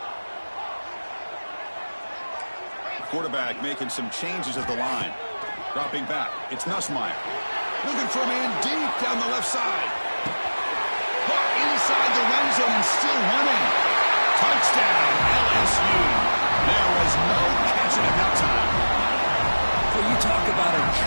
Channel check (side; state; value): both; inverted; correlation -1.00